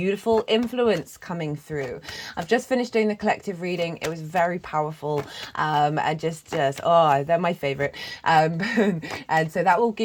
influence coming through. I've just finished doing the collective reading. It was very powerful. And just oh, they're my favorite. And so that will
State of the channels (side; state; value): both; identical; correlation 1.00